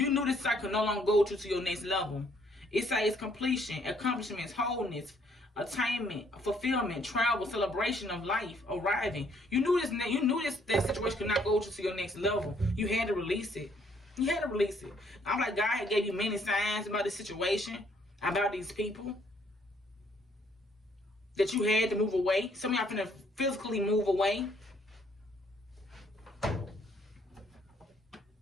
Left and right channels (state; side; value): normal; both; correlation 0.66